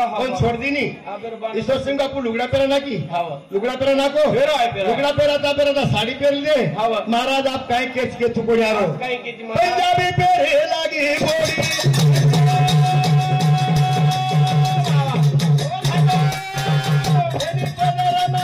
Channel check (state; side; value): identical; both; correlation 1.00